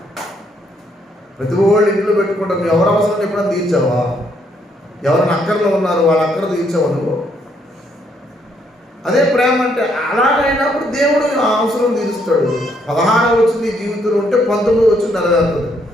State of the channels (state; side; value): normal; both; correlation 0.71